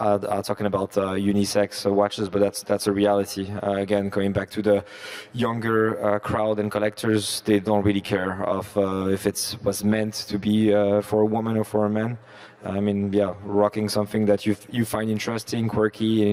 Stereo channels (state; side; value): identical; both; correlation 1.00